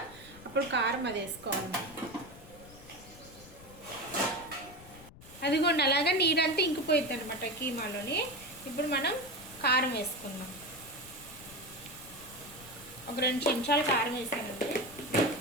అప్పుడు కారం అది వేసుకోవాలి. అదిగోండి, అలాగా నీరంతా ఇంకిపోయింది అనమాట కీమాలోని. ఇప్పుడు మనం కారం వేసుకుందాం. ఒక 2 చెంచాలు కారం వేసానండి.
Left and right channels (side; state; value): left; noise; rumble, 19 dB below the sound